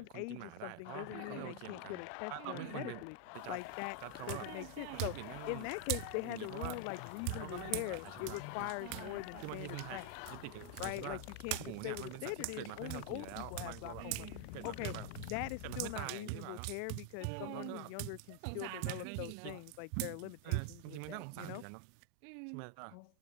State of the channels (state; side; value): different; both; correlation 0.00